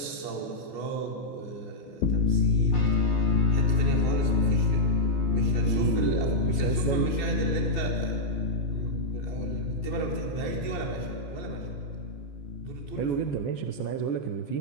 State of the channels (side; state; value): right; late; 15 ms